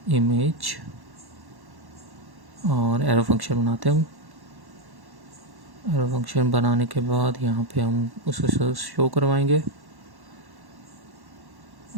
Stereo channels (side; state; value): left; late; 1.1 ms